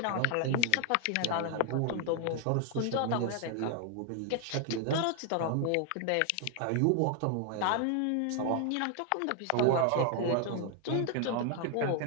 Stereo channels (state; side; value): different; both; correlation 0.00